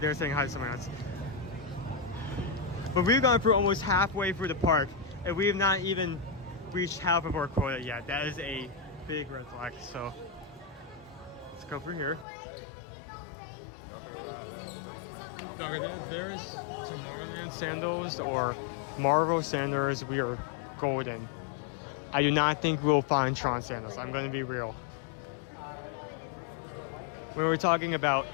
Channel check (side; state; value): right; drops out; at 12.2 s